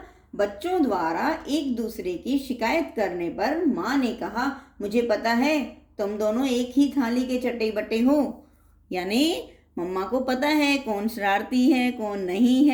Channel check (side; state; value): both; identical; correlation 1.00